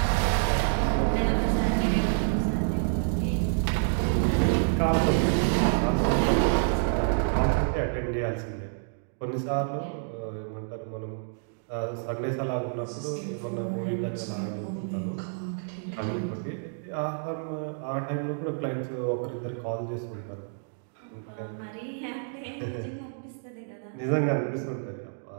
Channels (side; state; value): left; silent; digital silence